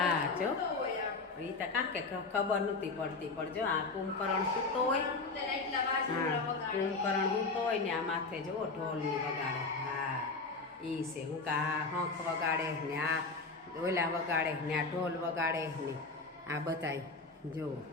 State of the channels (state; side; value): quieter; right; 3.9 dB